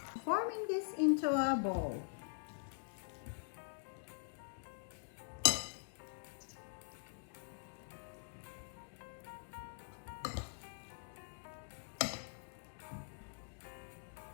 Forming this into a bowl.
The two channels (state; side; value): silent; right; digital silence